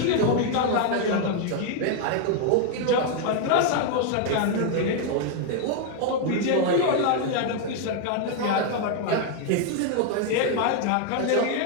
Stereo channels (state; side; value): different; both; correlation 0.00